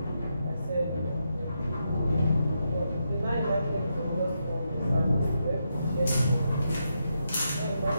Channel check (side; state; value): both; inverted; correlation -0.83